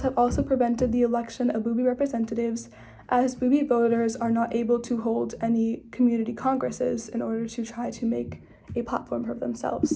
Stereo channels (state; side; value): identical; both; correlation 1.00